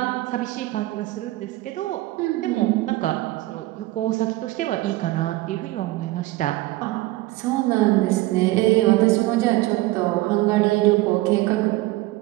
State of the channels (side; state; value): left; quieter; 18.4 dB